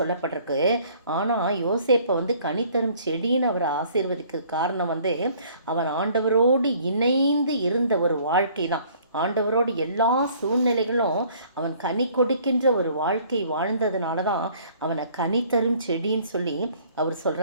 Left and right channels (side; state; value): both; inverted; correlation -0.56